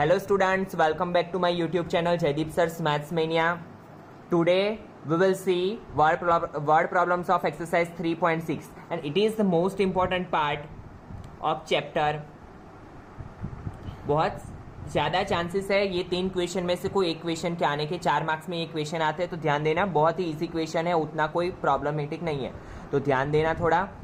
students, welcome back to my YouTube channel Jaideep Sir's Maths Mania. Today we will see word problems of exercise 3.6 and it is the most important part of chapter. बहुत ज़्यादा chances है ये 3 question में से कोई एक question के आने के। 4 मार्क्स में ये क्वेश्चन आते हैं तो ध्यान देना, बहुत ही इजी क्वेश्चन है, उतना कोई प्रॉब्लमेटिक नहीं है, तो ध्यान देना थोड़ा।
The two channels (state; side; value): identical; both; correlation 1.00